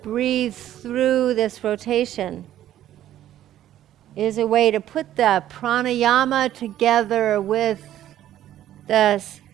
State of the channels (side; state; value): left; quieter; 12.3 dB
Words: breathe through this rotation is a way to put the pranayama together with the